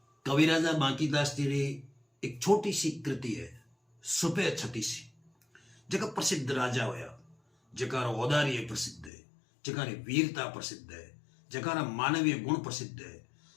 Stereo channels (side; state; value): right; drops out; at 9.1 s